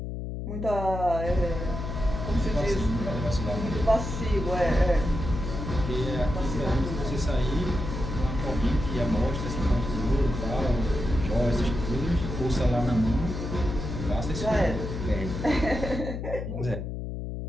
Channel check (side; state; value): left; noise; hum, 5 dB below the sound